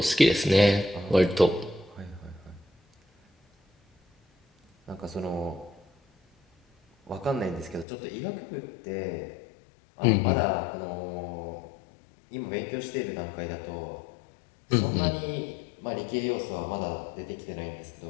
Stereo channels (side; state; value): right; drops out; at 7.9 s